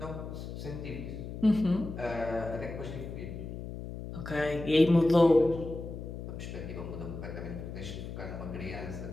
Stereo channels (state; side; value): noise; left; hum, 8 dB below the sound